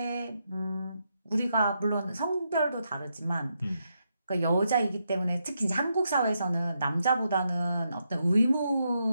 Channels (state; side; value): inverted; both; correlation -0.82